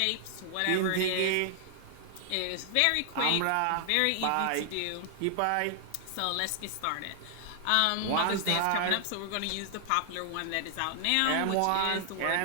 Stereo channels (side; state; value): both; different; correlation 0.00